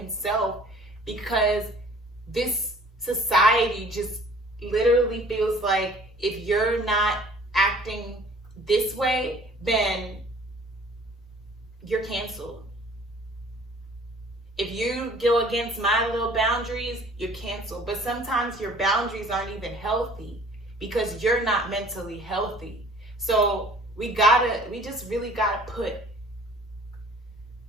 because this society just literally feels like if you're not acting this way, then you're canceled. If you go against my little boundaries, you're canceled. But sometimes your boundaries aren't even healthy because you're not mentally healthy. So we just really gotta put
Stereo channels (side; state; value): both; normal; correlation 0.52